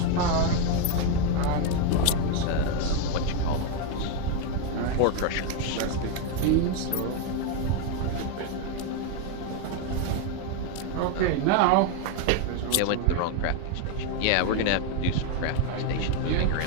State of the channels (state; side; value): different; both; correlation 0.01